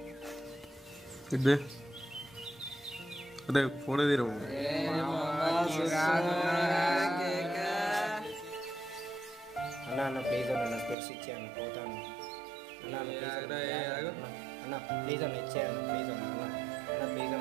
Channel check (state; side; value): drops out; left; at 11.0 s